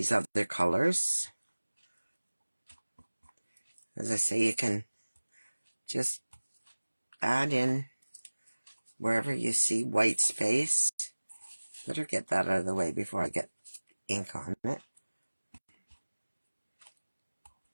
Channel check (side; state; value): both; inverted; correlation -1.00